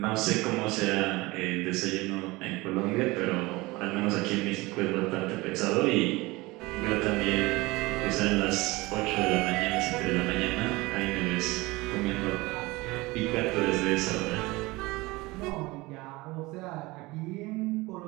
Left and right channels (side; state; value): left; quieter; 21.9 dB